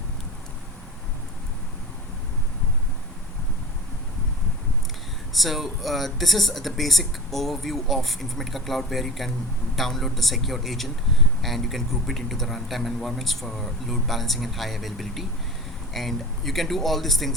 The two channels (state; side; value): normal; both; correlation 0.34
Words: this is the basic overview of Informatica Cloud, where you can download the secure agent and you can group it into the runtime environments for load balancing and high availability. And you can do all these